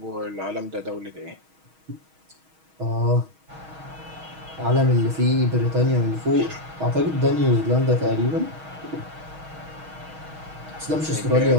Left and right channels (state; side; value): late; left; 6.3 ms